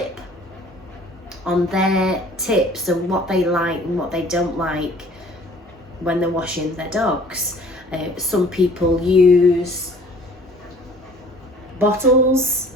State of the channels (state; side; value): normal; both; correlation 0.52